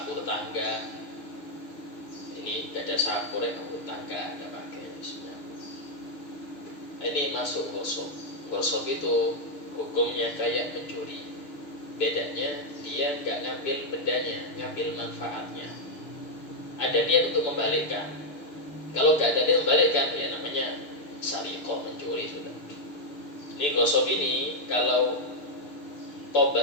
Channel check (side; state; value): right; late; 6.6 ms